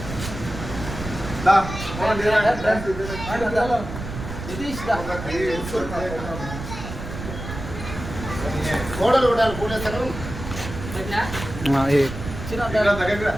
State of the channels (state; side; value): noise; right; rumble, 9 dB below the sound